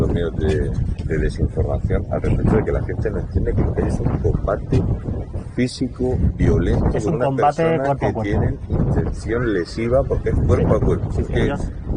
medios de desinformación al respecto de que la gente no entiende que lo que es un combate físico, violento, es con un unas combate personas cuerpo a que cuerpo. tienen intención lesiva porque es cuerpo a cuerpo. Sí, Porque ellos...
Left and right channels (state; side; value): identical; both; correlation 1.00